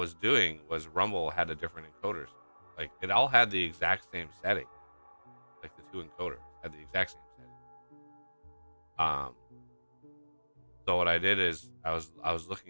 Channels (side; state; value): both; inverted; correlation -1.00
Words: doing was Rumble had a different encoders. Like it all had the exact same setting. Like the two encoders had the exact same setting. So what I did is I was